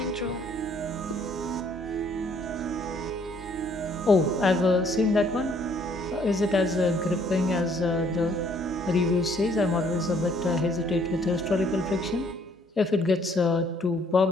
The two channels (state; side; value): normal; both; correlation 0.64